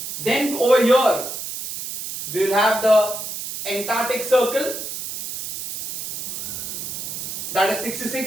Then over here, we will have the Antarctic Circle, that is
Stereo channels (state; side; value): noise; right; hiss, 7 dB below the sound